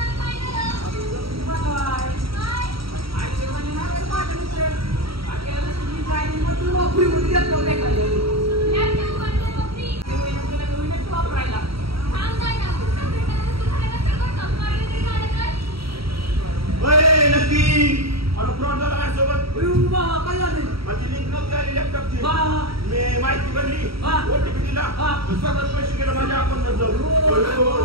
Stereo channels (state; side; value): late; left; 0.75 ms